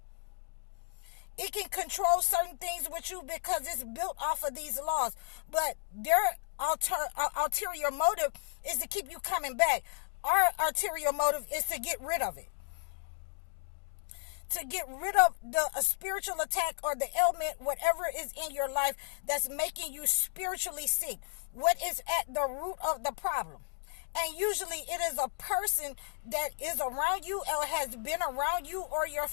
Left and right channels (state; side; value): silent; right; digital silence